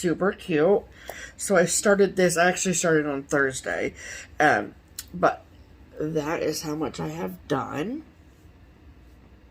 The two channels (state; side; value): identical; both; correlation 1.00